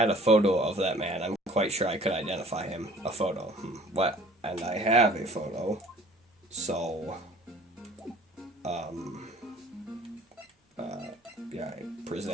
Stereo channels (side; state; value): both; normal; correlation 0.51